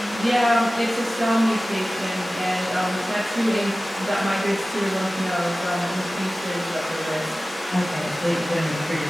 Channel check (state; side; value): normal; both; correlation 0.96